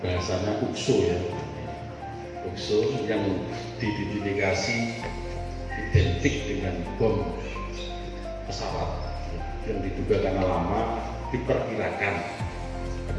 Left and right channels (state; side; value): identical; both; correlation 1.00